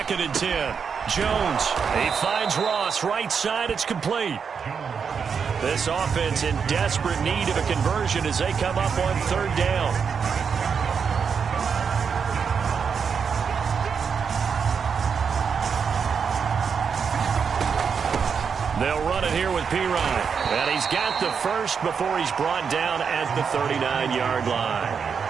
and 10. Jones, he finds Ross, right side, it's complete. This offense in desperate need of a conversion as they come up on 3rd down. They'll run it here with Pirine. And he's got the first before he's brought down at the 39-yard line.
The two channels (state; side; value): quieter; left; 6.3 dB